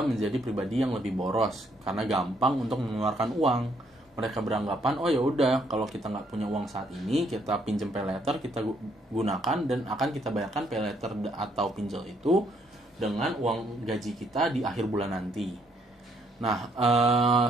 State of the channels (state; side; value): normal; both; correlation 0.70